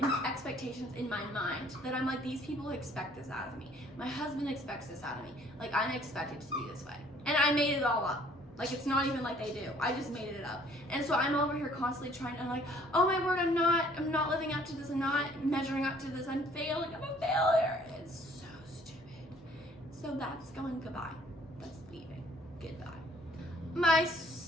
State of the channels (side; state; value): both; normal; correlation 0.58